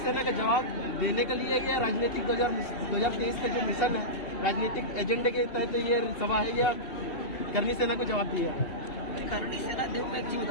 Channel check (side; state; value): right; late; 2.7 ms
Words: का जवाब देने के लिए या राजनीतिक 2023 का जो मिशन है, राजनीतिक एजेंडे के तहत ये सभा है, या करनी सेना को जवाब दिया? करनी सेना, देखो मैं एक चीज